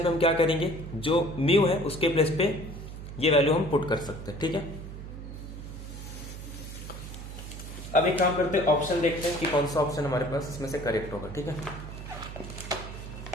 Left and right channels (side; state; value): right; noise; hum, 10 dB below the sound